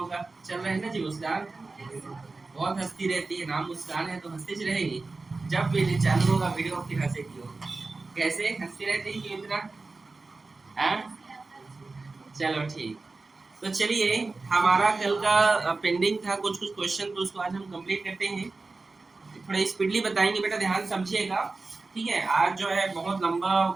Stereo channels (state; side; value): quieter; left; 3.7 dB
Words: का चल रहा है ना जी? मुस्कान बहुत हंसती रहती है, नाम मुस्कान है तो हंसती रहेगी। जब भी चालू होगा वीडियो फिर हंसेगी हो। कैसे हंसती रहती है क्यों इतना? चलो ठीक। तो चलिए, हमारा कल का पेंडिंग था कुछ क्वेश्चन, तो उसको आज हम कंप्लीट करते हैं। थोड़ा स्पीडली बताएंगे बेटा, ध्यान समझिएगा। ठीक है, आज जो है बहुत लंबा